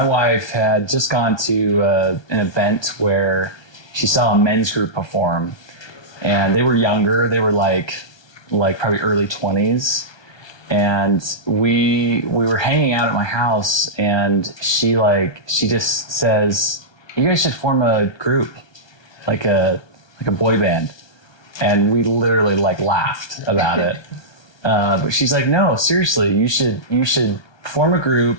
wife had just gone to an event where she saw a men's group perform, and they were younger. They were like probably early 20s, and we were hanging out at my house, and she just says, "You guys should form a group, like a boy band," and we literally laughed about it. But she's like, "No, seriously, you should form a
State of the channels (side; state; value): right; late; 1.2 ms